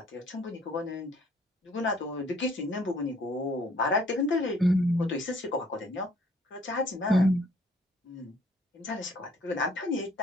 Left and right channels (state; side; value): normal; both; correlation 0.60